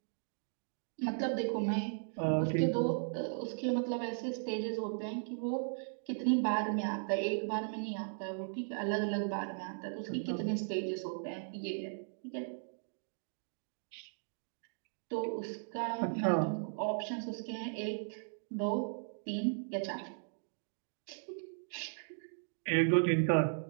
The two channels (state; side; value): silent; left; digital silence